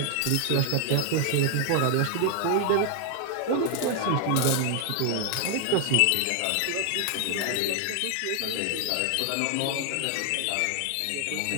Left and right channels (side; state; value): both; different; correlation 0.00